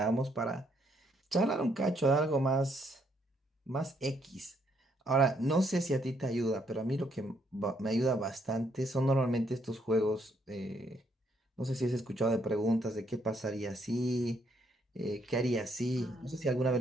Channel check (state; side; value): normal; both; correlation 0.71